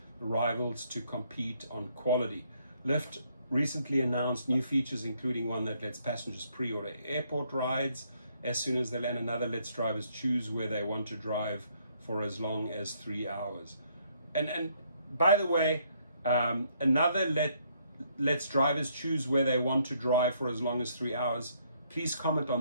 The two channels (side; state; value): both; inverted; correlation -0.69